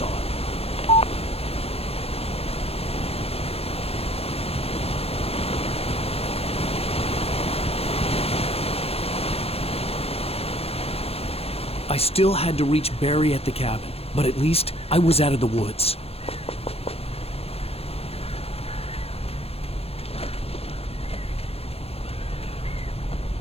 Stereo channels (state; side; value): late; right; 0.29 ms